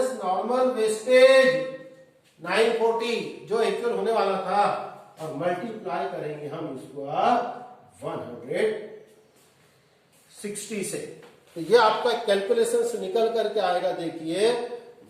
नॉर्मल वेस्टेज 940 जो एक्चुअल होने वाला था, और मल्टीप्लाई करेंगे हम इसको 160 से। तो ये आपका कैलकुलेशन से निकल करके आएगा देखिए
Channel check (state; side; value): identical; both; correlation 1.00